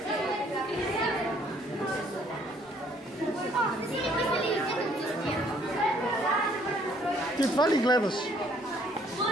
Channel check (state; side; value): normal; both; correlation 0.63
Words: Ти това ли гледаш?